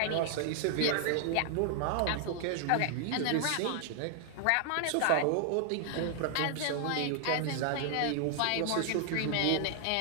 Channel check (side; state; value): both; different; correlation 0.00